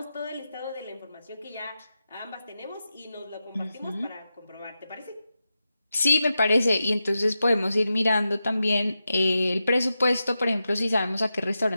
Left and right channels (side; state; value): both; inverted; correlation -0.90